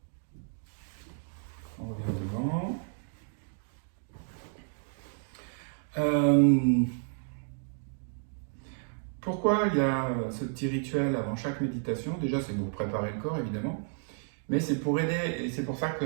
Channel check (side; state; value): left; silent; 57 dB below the other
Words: On revient devant. Pourquoi il y a ce petit rituel avant chaque méditation? Déjà, c'est pour préparer le corps, évidemment. Mais c'est pour aider, et c'est pour ça